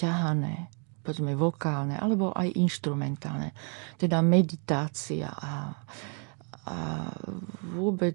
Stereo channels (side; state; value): left; quieter; 39.5 dB